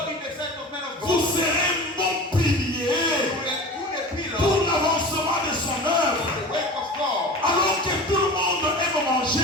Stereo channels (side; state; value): both; normal; correlation 0.35